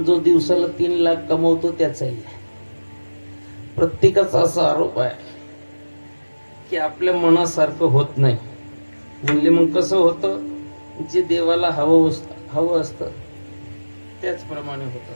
जो दिवसाला 3 लाख कमवतो त्याचाही आहे. प्रत्येकाचा असा आरोप आहे की आपल्या मनासारखं होत नाही. म्हणजे मग कसं होतं, जे देवाला हवं असतं त्याचप्रमाणे होत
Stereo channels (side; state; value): both; inverted; correlation -1.00